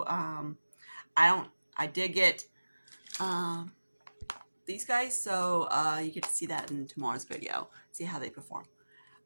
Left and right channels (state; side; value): inverted; both; correlation -1.00